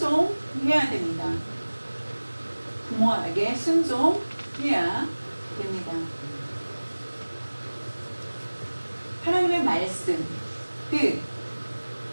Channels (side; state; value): both; inverted; correlation -1.00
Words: 됩니다. 부모에게 순종해야 됩니다. 하나님의 말씀 뜻을